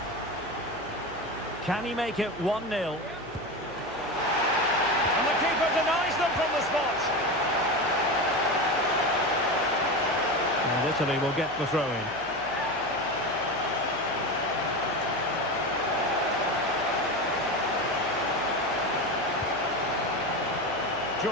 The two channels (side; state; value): right; noise; hum, 21 dB below the sound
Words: Can he make it 1-0? And the keeper denies them from the spot. And Italy will get the throw-in.